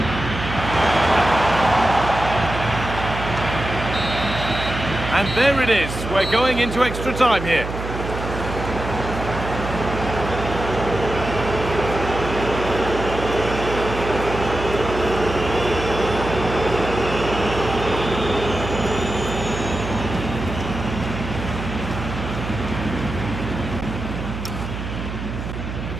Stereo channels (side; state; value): right; noise; hum, 7 dB below the sound